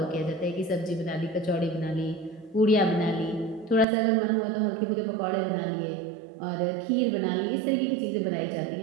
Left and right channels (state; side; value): drops out; left; at 3.9 s